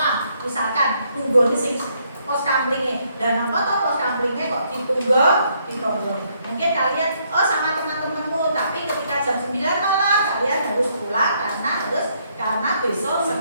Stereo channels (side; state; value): both; inverted; correlation -0.71